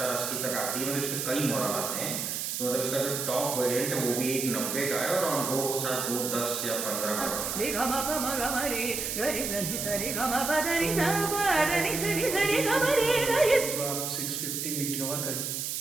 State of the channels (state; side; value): noise; right; hiss, 3 dB below the sound